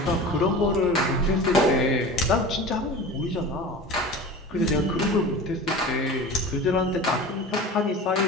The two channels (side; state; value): both; normal; correlation 0.34